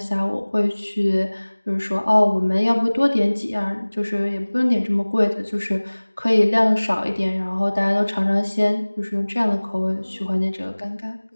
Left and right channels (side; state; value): both; inverted; correlation -1.00